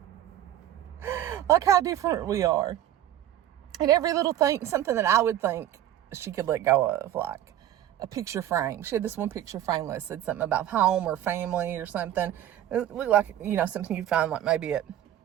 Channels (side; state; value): left; quieter; 12.1 dB